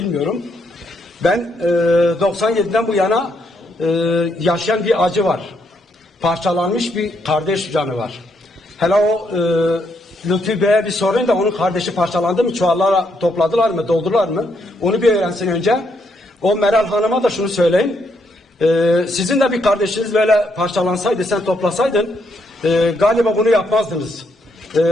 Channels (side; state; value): both; normal; correlation 0.75